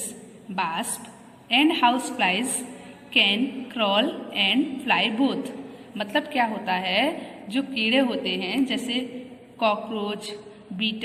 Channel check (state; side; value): identical; both; correlation 1.00